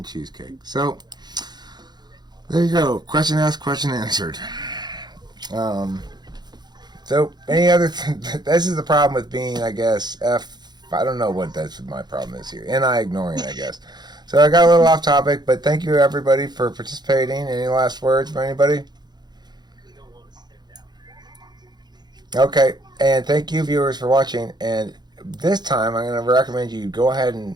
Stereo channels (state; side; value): late; left; 0.20 ms